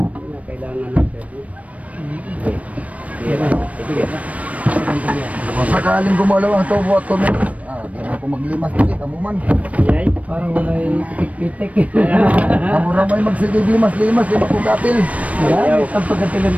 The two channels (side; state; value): left; late; 0.067 ms